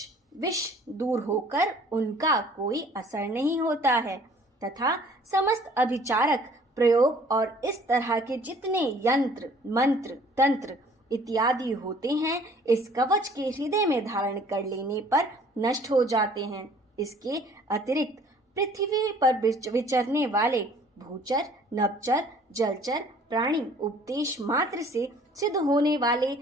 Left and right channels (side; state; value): both; normal; correlation 0.54